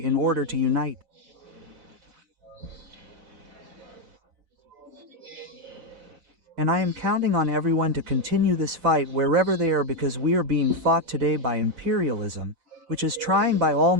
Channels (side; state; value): left; late; 6.0 ms